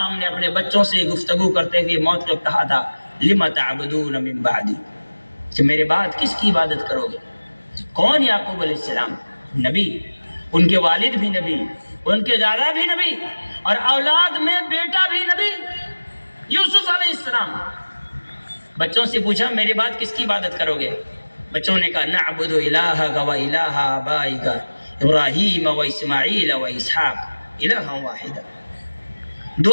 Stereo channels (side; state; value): both; inverted; correlation -1.00